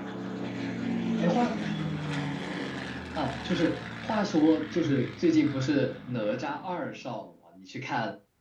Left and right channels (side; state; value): both; identical; correlation 1.00